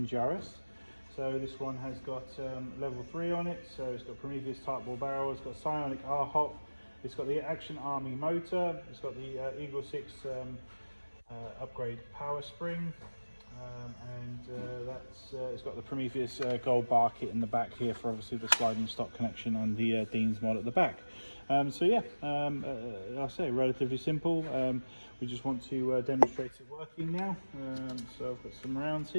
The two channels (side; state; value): both; inverted; correlation -1.00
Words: So this one has got level 3 on it, so it's got Prometheus type ball barrel, it's got Psionic R Hop, it's got the Action Army motor, it's got the EagleSix upgrade power spring, it's got the Prometheus gold bar kit in the back here for obviously the sliding stock connection and the Dean's mod at the back. So yeah, I'll say relatively simple. We just want to demonstrate it working now. So I've got some rounds